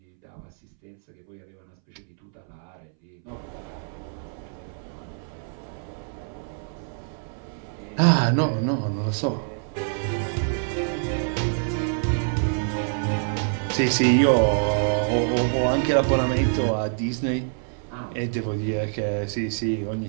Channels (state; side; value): silent; left; 60 dB below the other